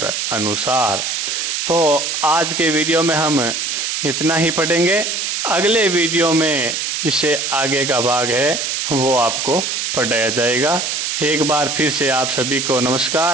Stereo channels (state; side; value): noise; right; hiss, 1 dB below the sound